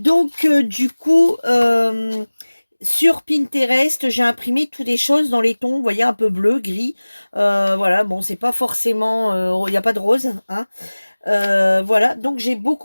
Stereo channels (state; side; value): inverted; both; correlation -1.00